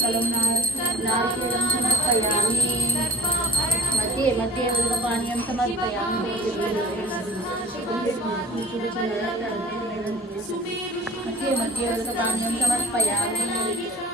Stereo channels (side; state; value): both; normal; correlation 0.47